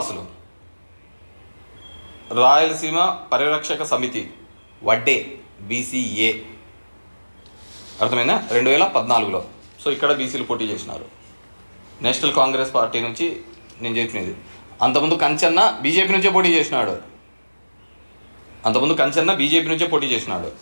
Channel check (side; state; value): both; inverted; correlation -1.00